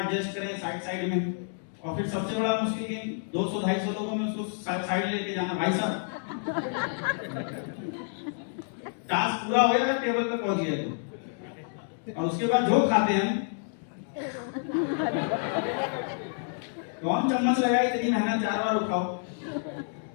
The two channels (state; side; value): silent; right; digital silence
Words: एडजस्ट करें साइड में, और फिर सबसे बड़ा मुश्किल गेम 200-250 लोगों में उसको साइड लेके जाना। भाई साहब, टास्क पूरा हो गया, टेबल पे पहुंच गया तो, और उसके बाद जो खाते हैं कौन चम्मच लगाई, इतनी मेहनत 4 बार उठाओ,